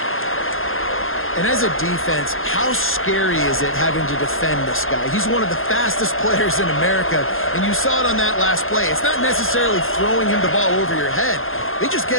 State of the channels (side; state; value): right; late; 0.60 ms